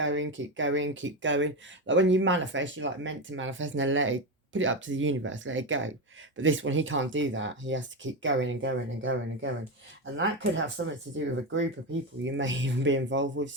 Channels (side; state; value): both; normal; correlation 0.15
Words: keep going, keep going. Like when you manifest, you're like meant to manifest and then let it, put it up to the universe, let it go. But this one, he can't do that. He has to keep going and going and going and going. And that could have something to do with a group of people you may even be involved